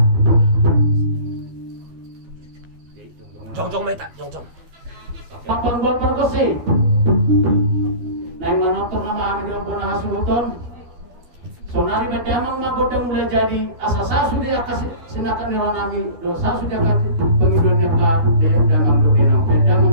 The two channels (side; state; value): left; late; 12 ms